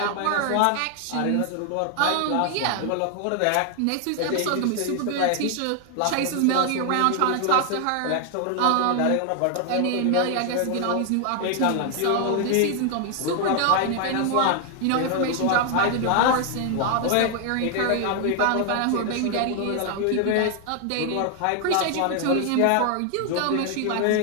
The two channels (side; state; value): both; different; correlation 0.00